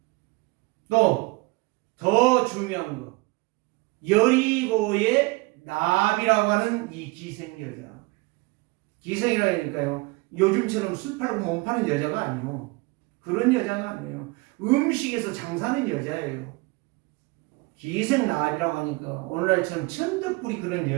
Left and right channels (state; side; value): quieter; left; 24.7 dB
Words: 또 더 중요한 거, 여리고의 나비라고 하는 이 기생 여자. 기생이라니까요. 요즘처럼 술 팔고 몸 파는 여자가 아니에요. 그런 여자가 아니에요. 음식에서 장사하는 여자예요. 기생 나비라고 하니까 오늘날처럼 천덕꾸리 그런